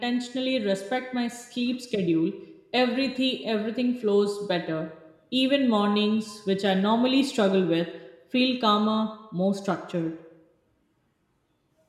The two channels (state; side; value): identical; both; correlation 1.00